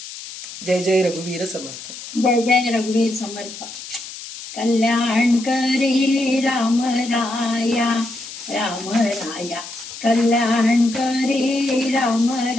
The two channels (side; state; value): left; noise; hiss, 12 dB below the sound